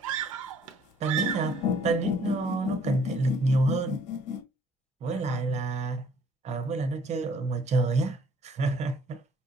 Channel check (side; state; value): both; normal; correlation 0.59